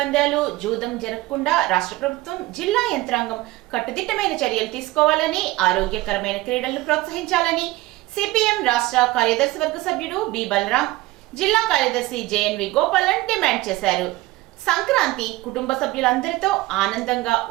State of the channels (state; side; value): quieter; left; 19.1 dB